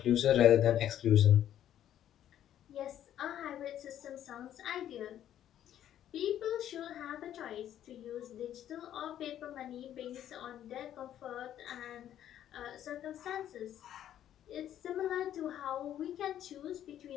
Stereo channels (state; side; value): quieter; right; 11.1 dB